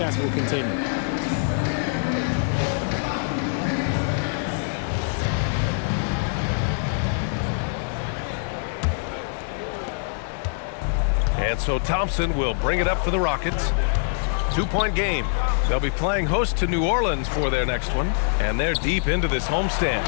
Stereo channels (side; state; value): right; silent; digital silence